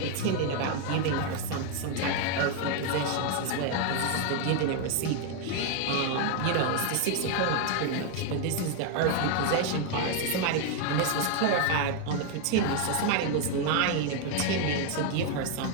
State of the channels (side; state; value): both; different; correlation 0.01